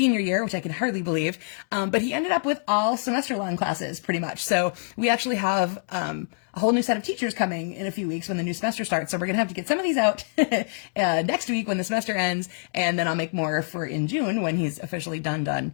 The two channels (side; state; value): right; silent; digital silence